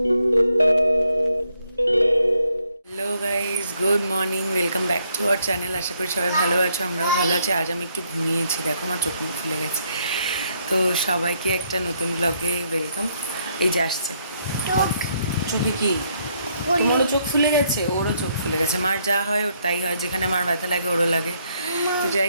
guys, good morning, welcome back to our channel. আশা করি সবাই ভালো আছো, আমরাও ভালো আছি। আজ আমি একটু ঘুমিয়েছি, দেখো আমার চোখ মুখ ফুলে গেছে। তো সবাইকে একটা নতুন ব্লগে ওয়েলকাম। এই যে আসছে চোখে কি তোমারও চোখ ফুলে গেছে, ওরও চোখ ফুলে গেছে। মার যা হয় ওর তাই হয়, যেখানে মার ব্যথা লাগে ওরও লাগে। তো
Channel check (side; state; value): both; inverted; correlation -0.72